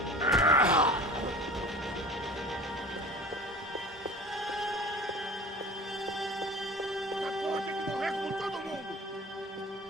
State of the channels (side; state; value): both; normal; correlation 0.40